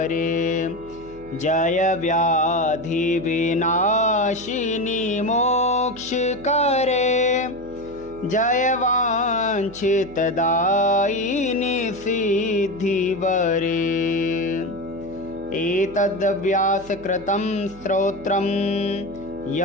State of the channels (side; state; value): right; noise; hum, 19 dB below the sound